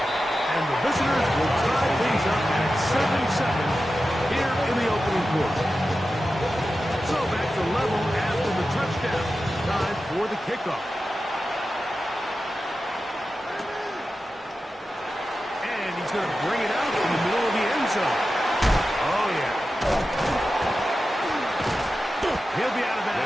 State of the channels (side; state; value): both; normal; correlation 0.92